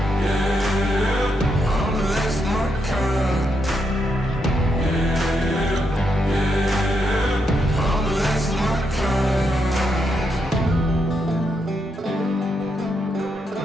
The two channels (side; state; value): both; normal; correlation 0.81